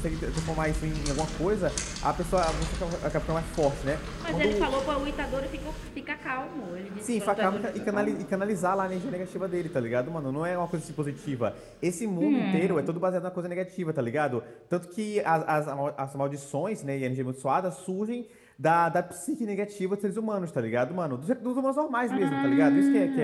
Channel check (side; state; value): both; identical; correlation 1.00